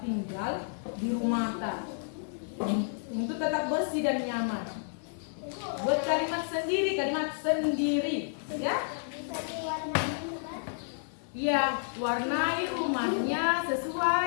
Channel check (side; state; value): right; silent; 56 dB below the other